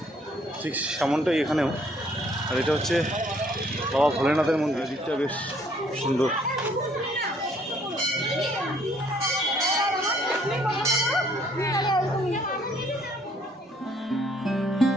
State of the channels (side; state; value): both; normal; correlation 0.63